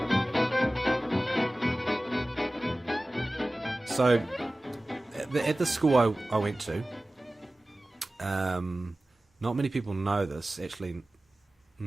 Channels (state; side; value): normal; both; correlation 0.97